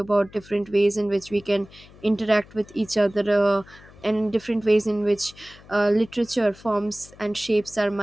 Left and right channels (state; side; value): noise; left; hum, 23 dB below the sound